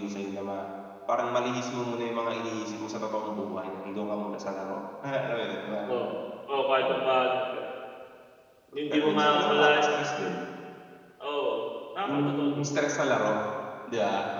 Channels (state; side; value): identical; both; correlation 1.00